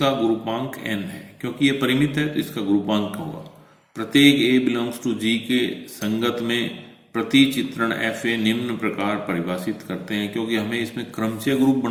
ग्रुपांक n है, क्योंकि ये परिमित है तो इसका ग्रुपांक होगा। प्रत्येक a बिलोंग्स टू g के संगत में प्रतिचित्रण एफ ए निम्न प्रकार परिभाषित करते हैं। क्योंकि हमें इसमें क्रमचय ग्रुप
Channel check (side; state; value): both; identical; correlation 1.00